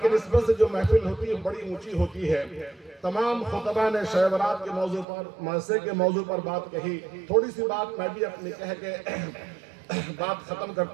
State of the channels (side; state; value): left; drops out; at 5.1 s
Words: کی نسبت سے جو محفل ہوتی ہے بڑی اونچی ہوتی ہے۔ تمام خطبہ نے شب برات کے موضوع پر، معاشرے کے موضوع پر بات کہی۔ تھوڑی سی بات میں بھی اپنی کہہ کے بات ختم